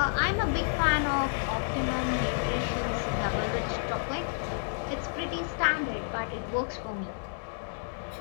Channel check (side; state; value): right; silent; digital silence